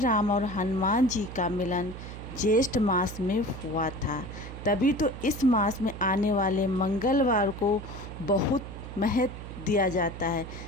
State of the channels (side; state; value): right; noise; hum, 11 dB below the sound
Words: और हनुमान जी का मिलन ज्येष्ठ मास में हुआ था। तभी तो इस मास में आने वाले मंगलवार को बहुत महत्व दिया जाता है।